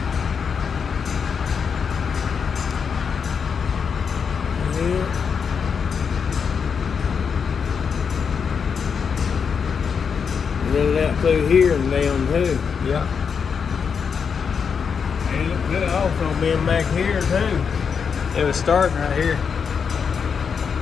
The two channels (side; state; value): right; quieter; 6.3 dB